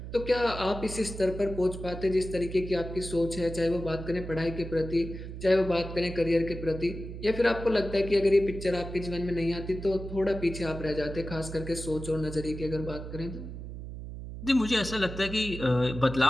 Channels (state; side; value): noise; right; hum, 9 dB below the sound